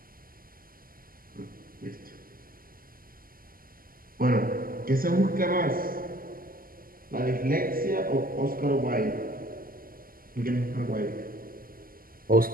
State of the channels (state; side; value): late; left; 0.42 ms